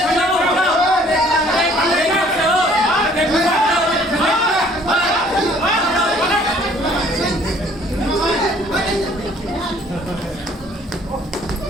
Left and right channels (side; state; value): both; normal; correlation 0.58